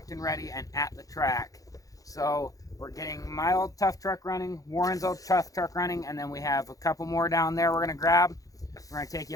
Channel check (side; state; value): right; late; 0.17 ms